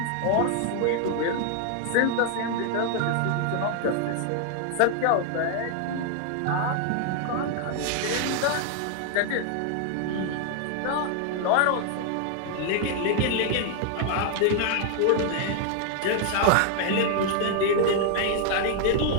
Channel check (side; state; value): both; different; correlation 0.00